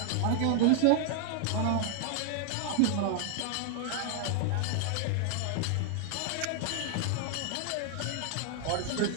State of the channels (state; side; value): different; both; correlation 0.00